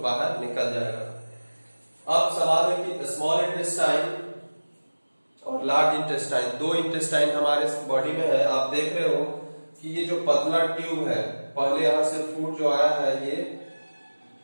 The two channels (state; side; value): inverted; both; correlation -1.00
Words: निकल जाएगा। अब सवाल है कि स्मॉल इंटेस्टाइन और लार्ज इंटेस्टाइन, 2 इंटेस्टाइन हमारे बॉडी में है। आप देख रहे हो कि ये जो पतला ट्यूब है, पहले यहां से फूड जो आया है ये